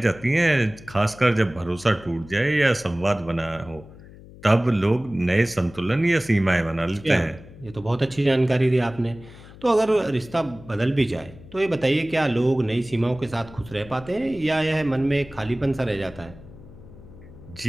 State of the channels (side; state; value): left; noise; hum, 19 dB below the sound